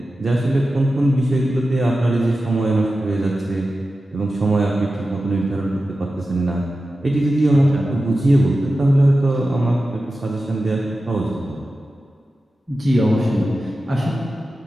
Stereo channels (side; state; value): both; normal; correlation 0.93